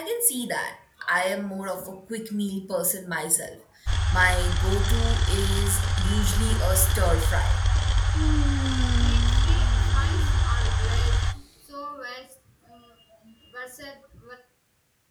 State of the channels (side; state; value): both; identical; correlation 1.00